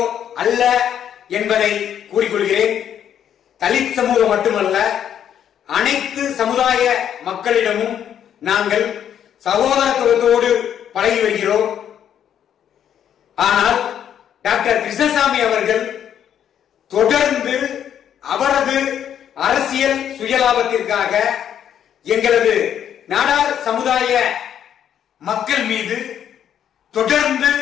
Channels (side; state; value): right; quieter; 9.5 dB